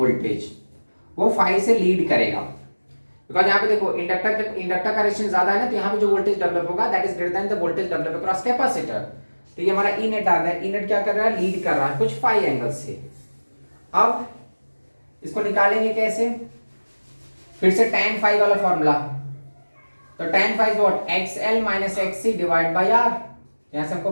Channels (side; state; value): both; inverted; correlation -1.00